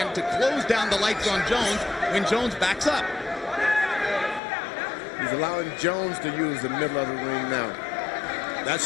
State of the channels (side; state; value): right; drops out; at 4.4 s